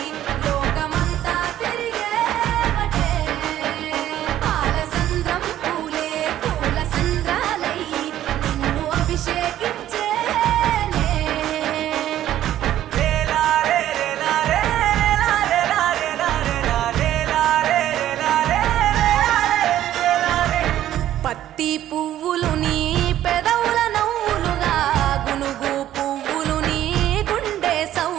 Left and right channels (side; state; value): left; quieter; 12.5 dB